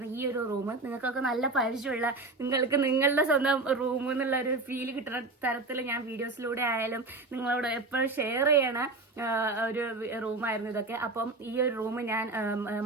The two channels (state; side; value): quieter; left; 3.3 dB